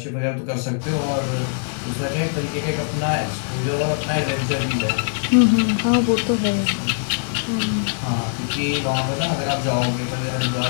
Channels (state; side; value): silent; right; digital silence